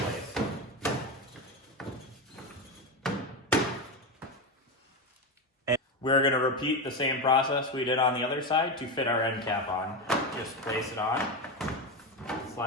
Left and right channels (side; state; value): both; normal; correlation 0.15